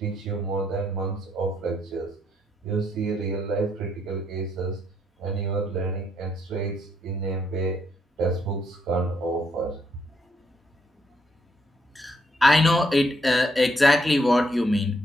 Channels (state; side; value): normal; both; correlation 0.74